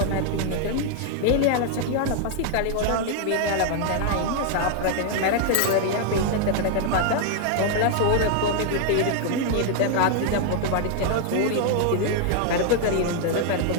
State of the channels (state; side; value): different; both; correlation -0.01